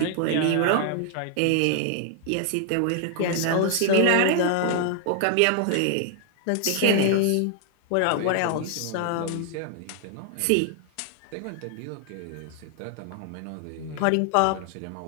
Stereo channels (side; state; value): both; different; correlation 0.00